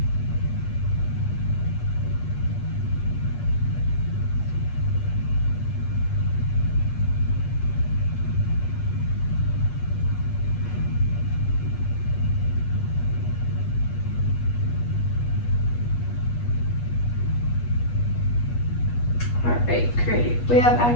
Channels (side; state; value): right; late; 8.4 ms